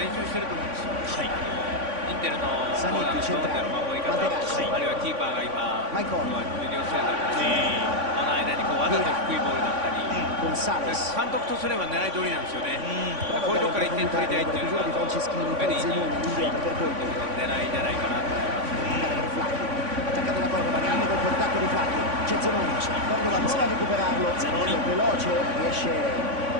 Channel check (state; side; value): late; left; 3.5 ms